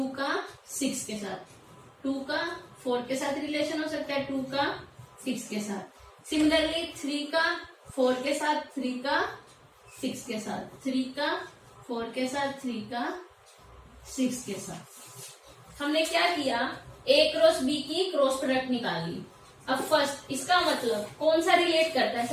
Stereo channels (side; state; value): both; identical; correlation 1.00